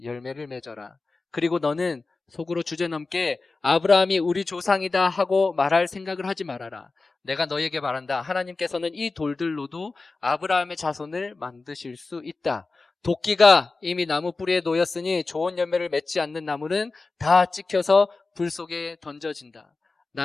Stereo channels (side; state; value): right; quieter; 3.8 dB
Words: 열매를 맺어라. 그리고 너는 속으로 주제넘게 아브라함이 우리 조상이다 하고 말할 생각을 하지 말아라. 내가 너에게 말한다. 하나님께서는 이 돌들로도 아브라함의 자손을 만드실 수 있다. 도끼가 이미 나무 뿌리에 놓였으니 좋은 열매를 맺지 않는 나무는 다 찍혀서 불 속에 던져진다.